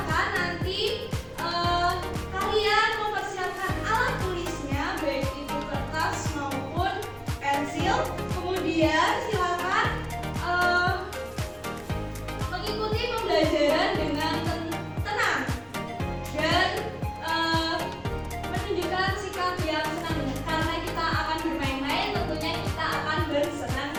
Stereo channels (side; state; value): both; identical; correlation 1.00